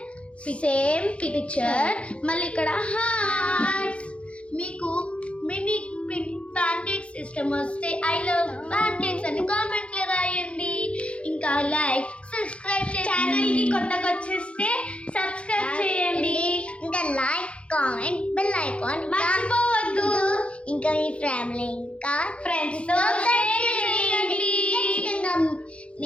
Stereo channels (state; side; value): late; right; 0.061 ms